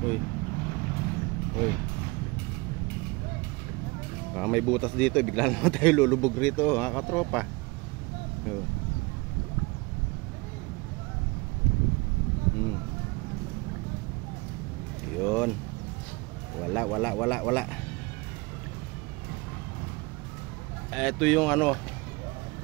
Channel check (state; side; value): quieter; left; 25.7 dB